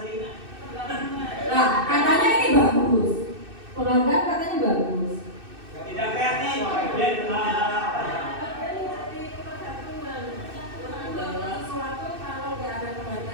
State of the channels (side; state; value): left; late; 2.6 ms